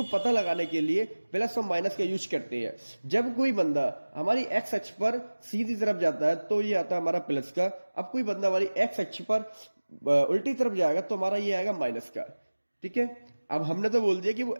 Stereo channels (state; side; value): inverted; both; correlation -1.00